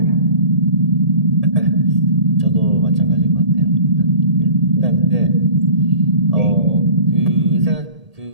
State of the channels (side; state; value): left; late; 1.8 ms